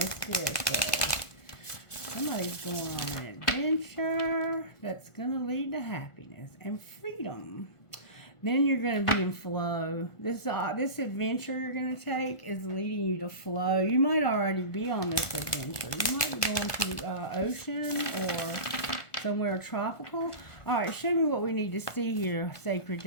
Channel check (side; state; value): right; late; 1.5 ms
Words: Spirit says. Somebody's going on an adventure that's going to lead to happiness and freedom. Then you're going to be in flow. This adventure you're going to take is leading you to flow. You might already be on this adventure. You might be going to ocean or somewhere tropical. All right, show me what we need to see here, Sacred